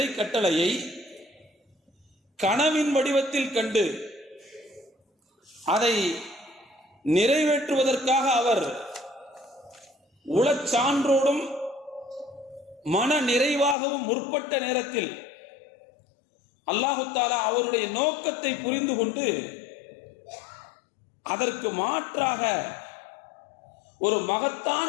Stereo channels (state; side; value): drops out; right; at 13.8 s